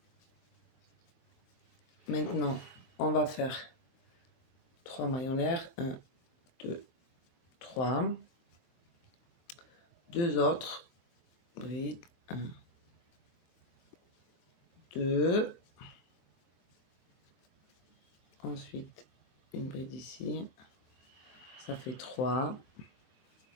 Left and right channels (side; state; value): right; late; 23 ms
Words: Maintenant, on va faire 3 mailles en l'air. 1, 2, 3. 2 autres brides. 1, 2. Ensuite, une bride ici. Ça fait 3,